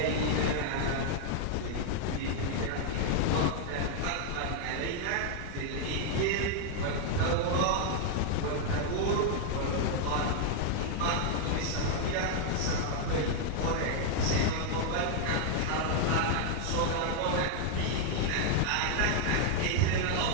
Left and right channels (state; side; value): different; both; correlation 0.00